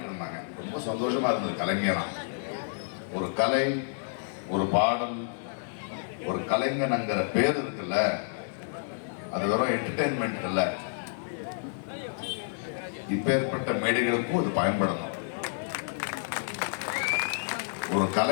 இருந்தாங்க, ரொம்ப சந்தோஷமா இருந்தது. கலைஞனா ஒரு கலை, ஒரு பாடல், ஒரு கலைஞனுங்கிற பேர் இருக்குல்ல, அது வெறும் என்டர்டெயின்மெண்ட் இல்ல. இப்பேற்பட்ட மேடைகளுக்கும் அது பயன்படணும். ஒரு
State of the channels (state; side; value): silent; right; digital silence